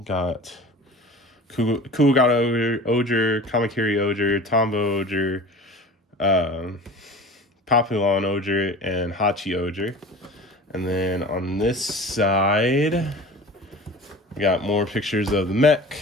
Got KingOhger, Kamakiri Ohger, Tombo Ohger, Papillon Ohger, and Hachi Ohger. And then on this side we got more pictures of the mech,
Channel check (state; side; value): normal; both; correlation 0.38